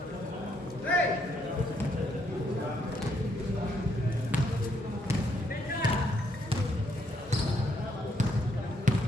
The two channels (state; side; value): normal; both; correlation 0.73